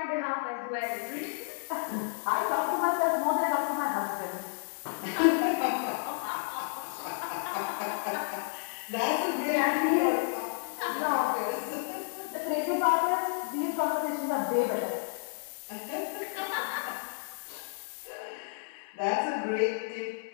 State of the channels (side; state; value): right; silent; digital silence